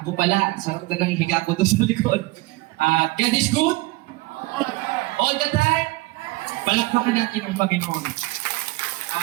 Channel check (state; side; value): quieter; left; 21.6 dB